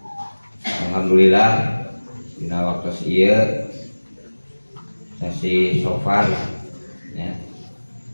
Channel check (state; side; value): inverted; both; correlation -1.00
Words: alhamdulillah dina waktu ieu sesi sofar ya.